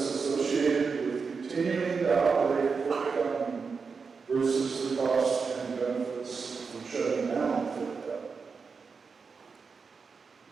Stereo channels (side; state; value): left; quieter; 5.2 dB